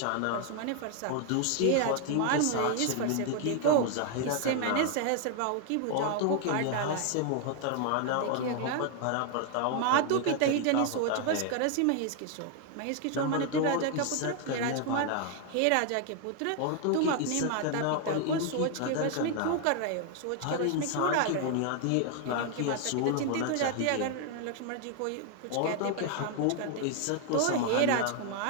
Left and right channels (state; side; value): different; both; correlation 0.00